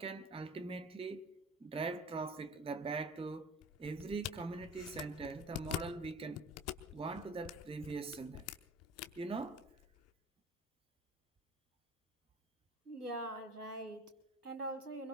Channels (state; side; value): normal; both; correlation 0.42